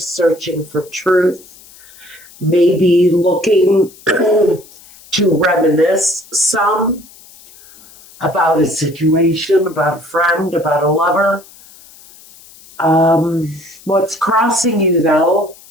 searching for truth, maybe looking to reminisce some about a situation, about a friend, about a lover. What's crossing you, though,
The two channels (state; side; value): noise; left; hiss, 23 dB below the sound